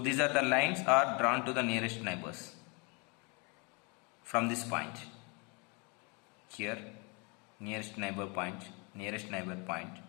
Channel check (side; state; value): right; quieter; 31.5 dB